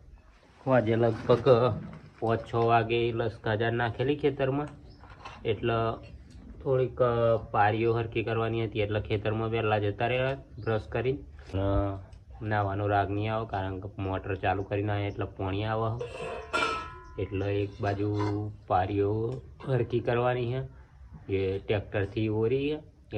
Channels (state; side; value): identical; both; correlation 1.00